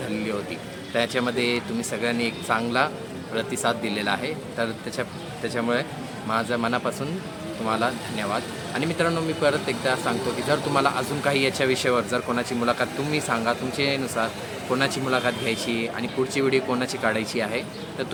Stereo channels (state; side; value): identical; both; correlation 1.00